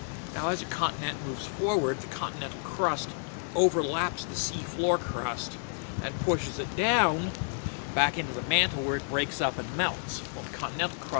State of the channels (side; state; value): right; silent; 58 dB below the other